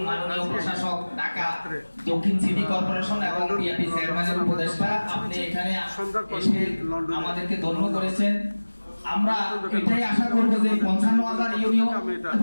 মাননীয় প্রশাসক ঢাকা দক্ষিণ সিটি কর্পোরেশন এবং বিএনপি চেয়ারম্যানের উপদেষ্টা, আপনি এখানে এসে আমাদেরকে ধন্য করেছেন। আমরা এটাই আশা করব যে 55,000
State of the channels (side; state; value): both; inverted; correlation -1.00